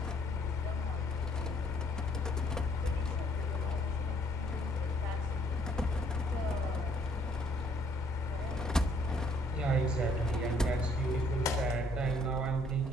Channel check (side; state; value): both; normal; correlation 0.64